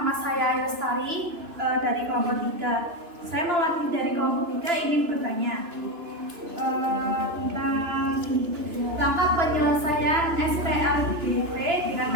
saya Lestari dari kelompok 3. Saya mewakili dari kelompok 3 ingin bertanya tentang langkah penyelesaian SPLDV dengan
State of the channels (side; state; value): left; late; 3.0 ms